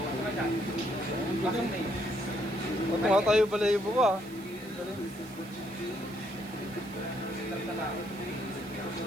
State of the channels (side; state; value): right; noise; hiss, 20 dB below the sound